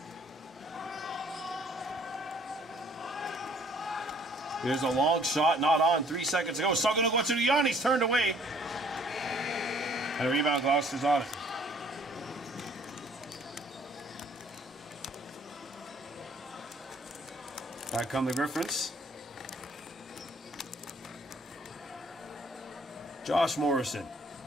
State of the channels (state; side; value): normal; both; correlation 0.59